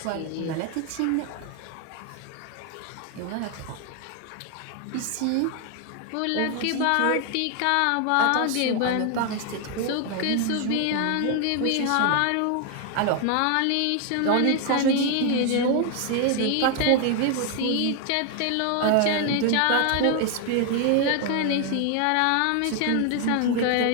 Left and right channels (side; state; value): both; different; correlation 0.01